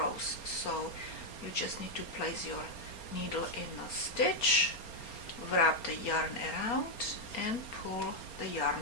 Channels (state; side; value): late; right; 4.3 ms